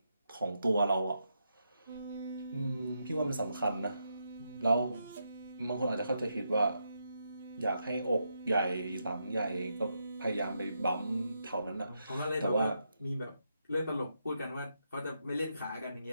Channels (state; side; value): inverted; both; correlation -0.82